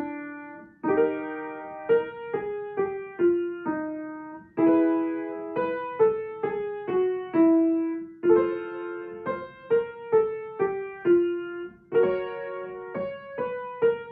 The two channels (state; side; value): identical; both; correlation 1.00